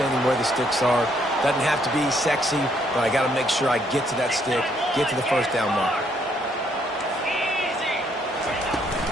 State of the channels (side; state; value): both; normal; correlation 0.70